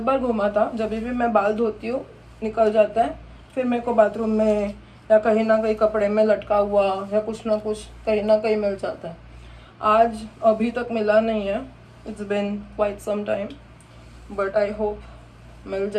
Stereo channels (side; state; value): both; identical; correlation 1.00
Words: बार घूमा था. जब भी मैं बाल धोती हूँ निकल जाता है. फिर मेरे को बाथरूम में या कहीं ना कहीं कपड़े में लटका हुआ या कुछ ना कुछ कहीं ना कहीं मिल जाता है. आज अभी तक मिला नहीं है. It's been quite some time, but I hope मिल